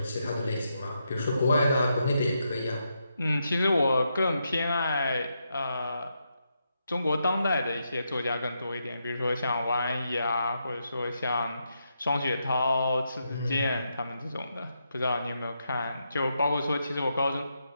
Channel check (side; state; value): both; inverted; correlation -0.82